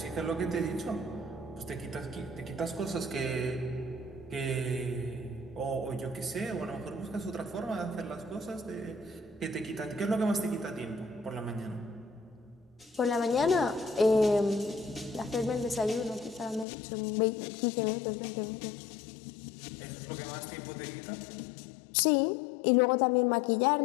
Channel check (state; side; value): drops out; right; at 16.7 s